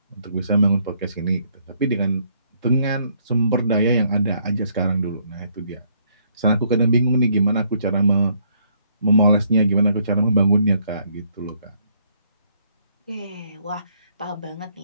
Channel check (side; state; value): both; inverted; correlation -0.68